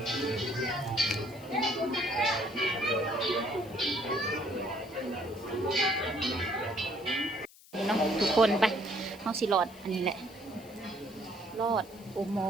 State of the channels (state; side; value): noise; left; hiss, 23 dB below the sound